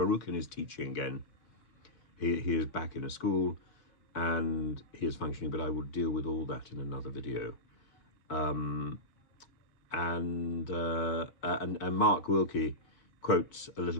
is teaching again. He is back in a school and he is functioning, but I will deal with all that in another video. And Mark Wilkie quotes a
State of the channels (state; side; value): late; right; 4.6 ms